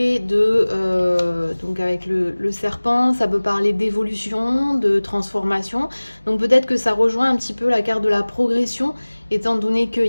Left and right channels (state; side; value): inverted; both; correlation -1.00